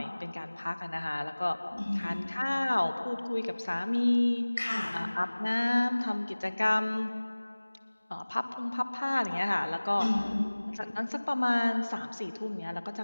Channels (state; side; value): inverted; both; correlation -1.00